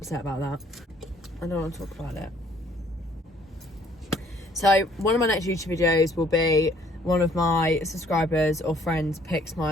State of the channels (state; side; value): normal; both; correlation 0.62